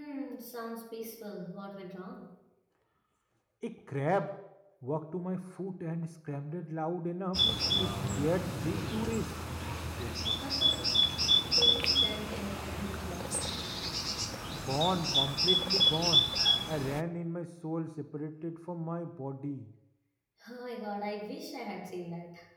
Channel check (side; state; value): both; identical; correlation 1.00